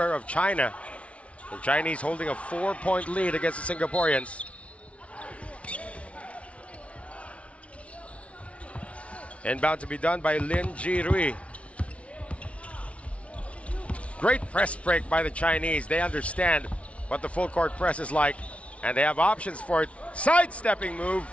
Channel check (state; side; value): late; right; 0.063 ms